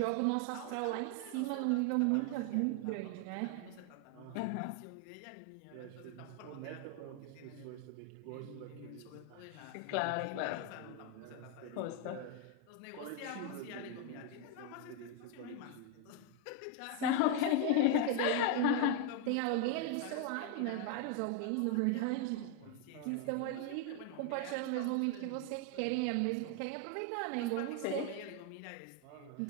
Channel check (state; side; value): different; both; correlation 0.01